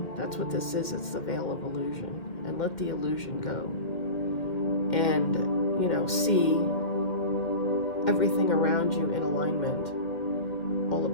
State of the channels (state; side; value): late; right; 2.1 ms